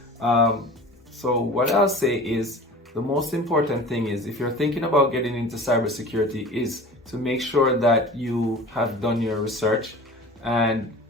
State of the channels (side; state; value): both; normal; correlation 0.39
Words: So what I'll say is, the most important thing is, if you're thinking about getting into cybersecurity, is to make sure that you have done your research and